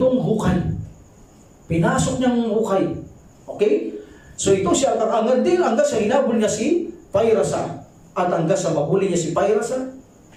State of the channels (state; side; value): identical; both; correlation 1.00